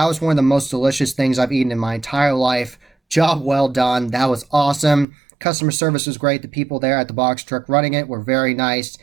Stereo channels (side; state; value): left; drops out; at 5.1 s